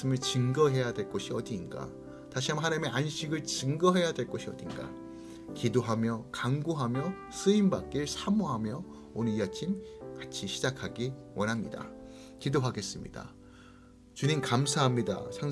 증거해야 될 곳이 어디인가, 다시 한번 하나님의 안식을 증거해야 될 곳이 어딘가, 기도하며 간구하며 쓰임받길 사모하며 오늘 이 아침 같이 시작하기 원합니다. 기도하겠습니다. 주님 감사합니다.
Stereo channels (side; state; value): both; identical; correlation 1.00